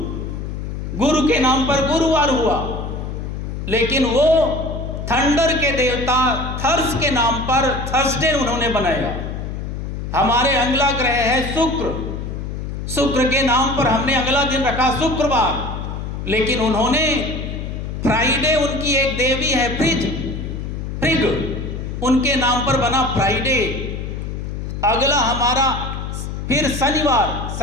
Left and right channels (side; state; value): left; noise; hum, 6 dB below the sound